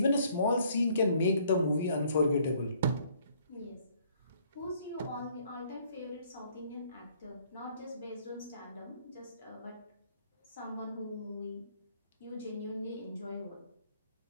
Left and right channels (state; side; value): inverted; both; correlation -0.62